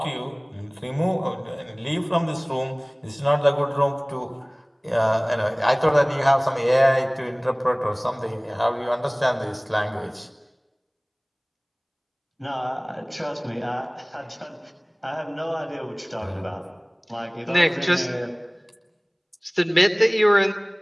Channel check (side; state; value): both; identical; correlation 1.00